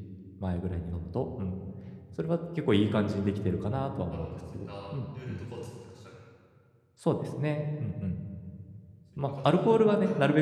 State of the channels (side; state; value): both; identical; correlation 1.00